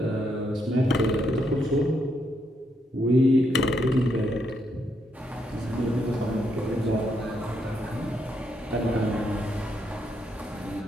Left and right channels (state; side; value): normal; both; correlation 0.78